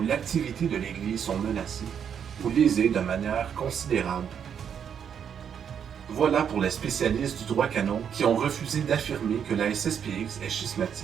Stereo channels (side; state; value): left; quieter; 8.0 dB